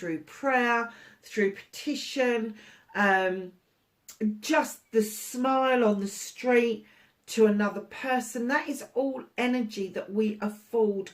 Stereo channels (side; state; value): both; identical; correlation 1.00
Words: prayer, through petition, just the smile on the street to another person. That is all energy that we afford